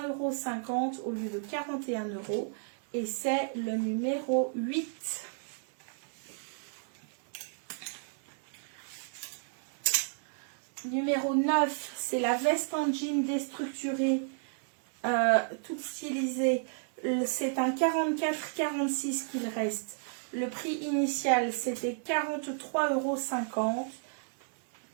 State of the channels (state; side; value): silent; left; digital silence